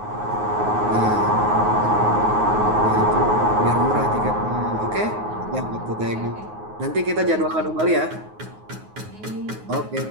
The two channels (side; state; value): left; late; 9.5 ms